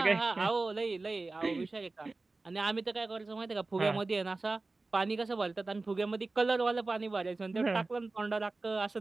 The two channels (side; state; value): left; quieter; 3.4 dB